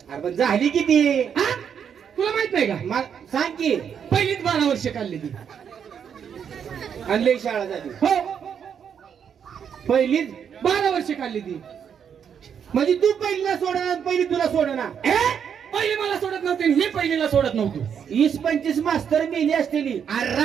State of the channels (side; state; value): left; quieter; 7.8 dB